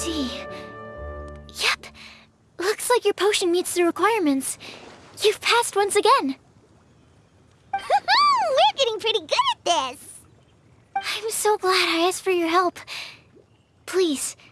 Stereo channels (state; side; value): identical; both; correlation 1.00